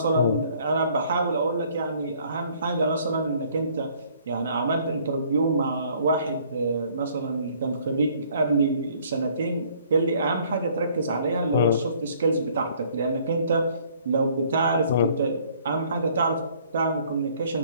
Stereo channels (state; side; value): inverted; both; correlation -0.60